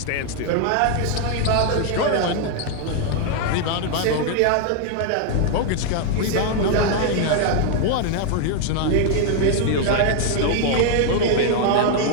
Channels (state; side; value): different; both; correlation 0.00